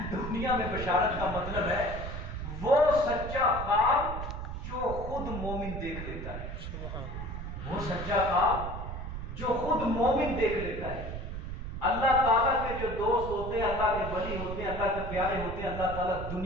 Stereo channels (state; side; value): noise; right; rumble, 6 dB below the sound